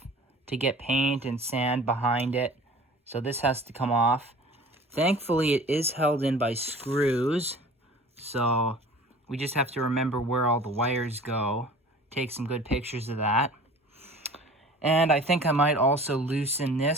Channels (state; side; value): normal; both; correlation 0.43